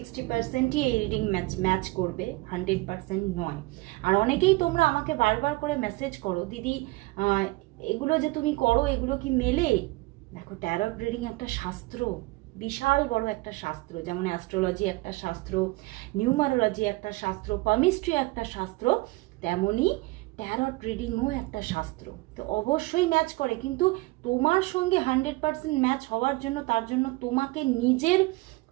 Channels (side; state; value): left; quieter; 22.4 dB